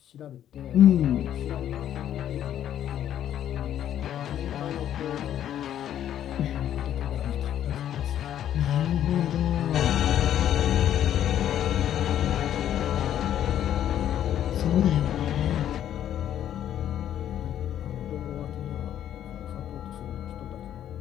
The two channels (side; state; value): right; quieter; 10.8 dB